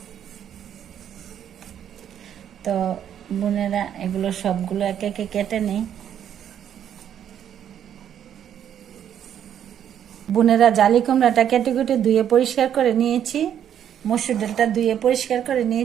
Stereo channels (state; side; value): quieter; left; 9.6 dB